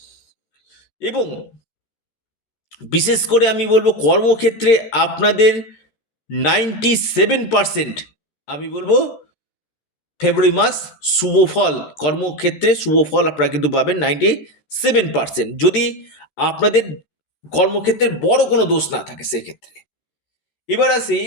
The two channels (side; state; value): right; late; 14 ms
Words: এবং বিশেষ করে আমি বলবো কর্মক্ষেত্রে আপনাদের 97% আমি বলবো ফেব্রুয়ারি মাস শুভ ফল, কর্মক্ষেত্রে শুভ ফল আপনারা কিন্তু পাবেন 97%, যদি আপনাদের কর্মক্ষেত্রে বড় কোনো দোষ না থাকে সেক্ষেত্রে। এবার আসি